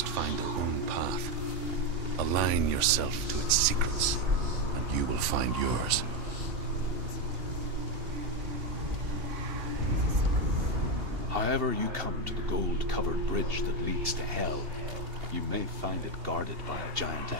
find their own path. Align yourself to its secrets, and you will find yours. However you come to the gold-covered bridge that leads to Hell, you may find it guarded by a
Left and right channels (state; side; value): late; left; 2.8 ms